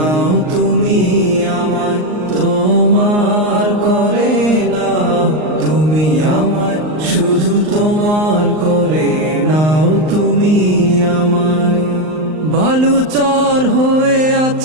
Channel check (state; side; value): late; left; 39 ms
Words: তুমি আমায়, তোমার করে নাও তুমি আমায়, শুধু তোমার করে নাও তুমি আমায়। বালুচর হয়ে